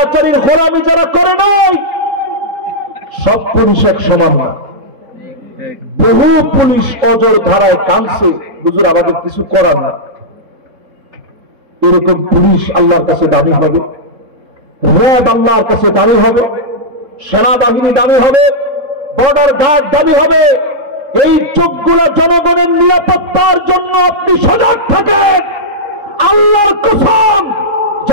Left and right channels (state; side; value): late; left; 3.7 ms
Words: গোলামি যারা করে নাই, সব পুলিশ এক সমান না। বহু পুলিশ অজর ধারায় কাঁদছে, হুজুর আমাদের কিছু করার না। এরকম পুলিশ আল্লাহর কাছে দামি হবে, র্যাব আল্লাহর কাছে দামি হবে, সেনাবাহিনী দামি হবে, বর্ডার গার্ড দামি হবে। এই চোখগুলো জনগণের নিরাপত্তার জন্য আপনি সজাগ থাকেন, আল্লাহর কসম